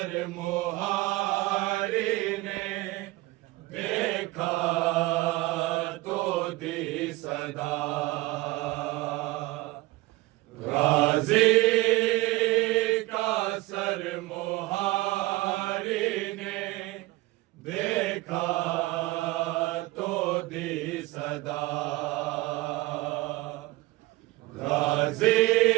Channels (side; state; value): left; quieter; 19.8 dB